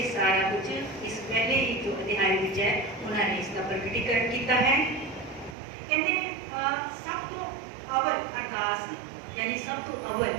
सारा कुछ इस पहले ही जो अध्याय विच है उन्होंने इसका प्रकटीकरण किया है। कहते सब तो अवल अरदास यानी सब तो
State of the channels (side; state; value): left; drops out; at 5.6 s